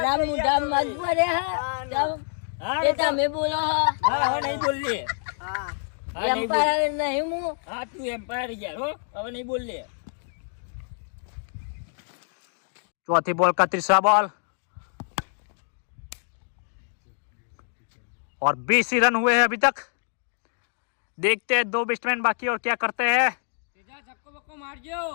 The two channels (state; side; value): silent; right; digital silence